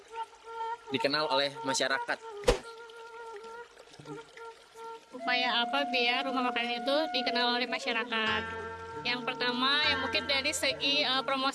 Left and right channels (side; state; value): both; identical; correlation 1.00